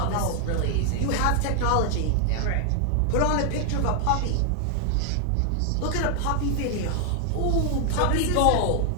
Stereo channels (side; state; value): both; different; correlation 0.00